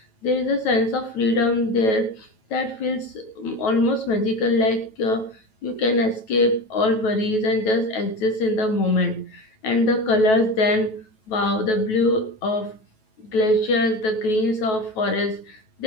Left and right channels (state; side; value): late; right; 9.2 ms